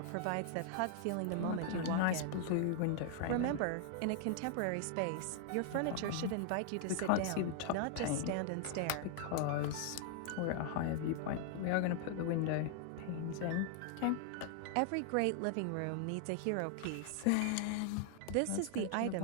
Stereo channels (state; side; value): different; both; correlation 0.00